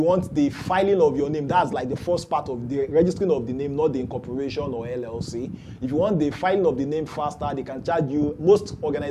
want the filing of your name. That's like the first part of the registering of the name, not the incorporation or LLC. If you want the filing of the name faster, they can charge you. Most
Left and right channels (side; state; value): both; identical; correlation 1.00